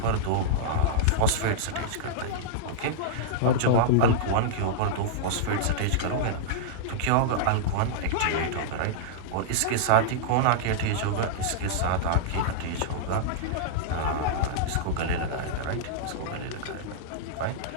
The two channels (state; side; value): different; both; correlation -0.02